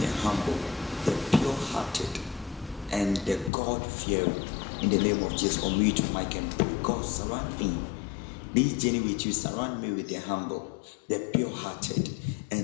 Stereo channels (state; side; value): drops out; right; at 3.5 s